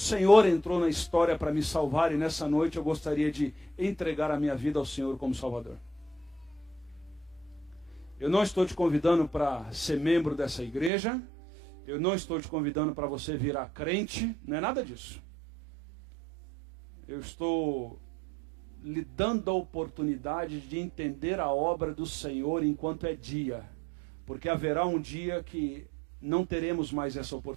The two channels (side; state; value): left; drops out; at 10.9 s